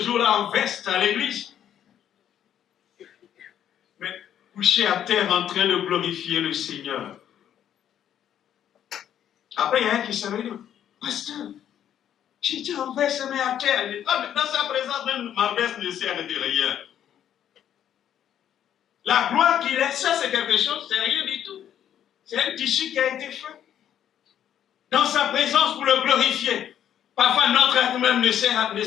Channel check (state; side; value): quieter; right; 10.1 dB